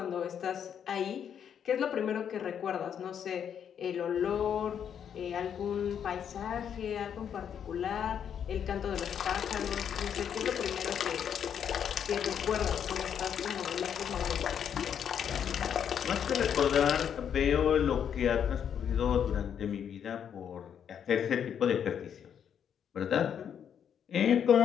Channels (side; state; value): right; quieter; 8.4 dB